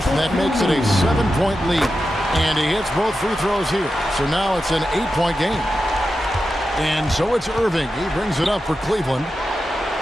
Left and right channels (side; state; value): both; normal; correlation 0.90